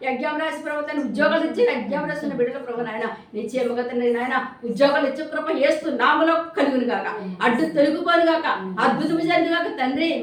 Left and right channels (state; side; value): identical; both; correlation 1.00